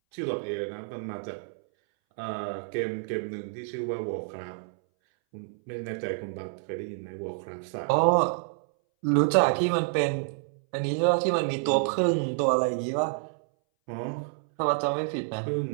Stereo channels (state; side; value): silent; left; 59 dB below the other